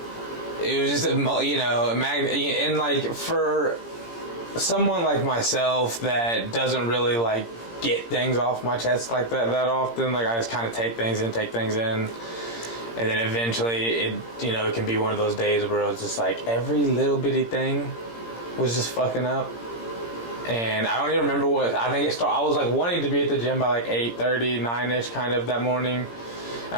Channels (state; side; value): late; right; 17 ms